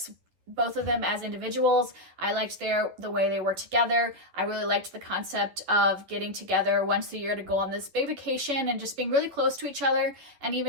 both of them as individuals. I liked the way they were together. I really liked the concept of getting together once a year to go on this big vacation and just being really close to each other. And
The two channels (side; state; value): left; late; 11 ms